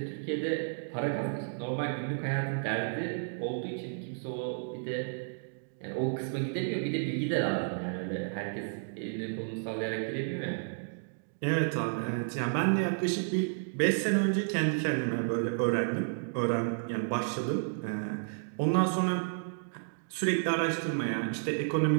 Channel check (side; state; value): left; silent; digital silence